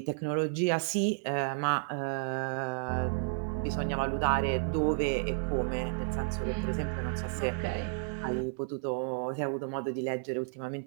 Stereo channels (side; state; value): left; silent; 56 dB below the other